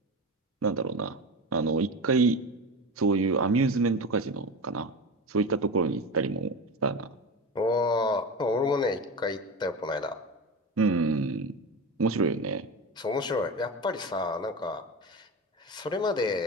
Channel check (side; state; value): both; normal; correlation 0.25